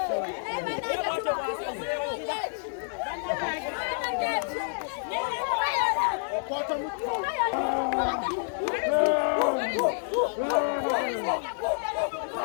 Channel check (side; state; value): right; silent; digital silence